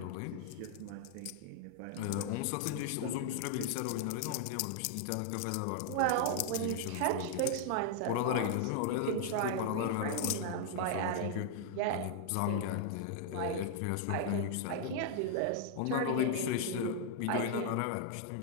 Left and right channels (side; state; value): both; different; correlation -0.01